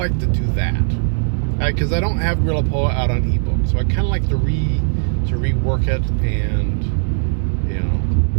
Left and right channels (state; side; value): silent; left; digital silence